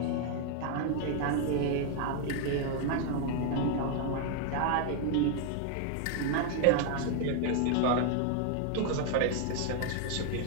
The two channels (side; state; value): both; different; correlation 0.00